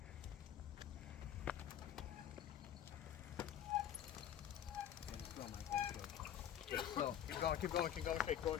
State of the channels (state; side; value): quieter; right; 10.3 dB